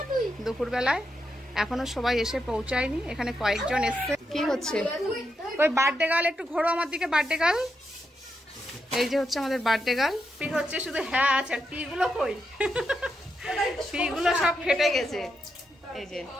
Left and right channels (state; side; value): normal; both; correlation 0.84